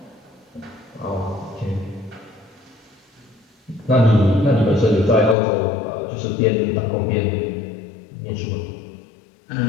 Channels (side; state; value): right; drops out; at 5.4 s